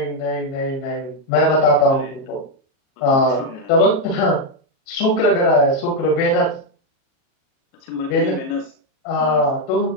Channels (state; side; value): late; right; 37 ms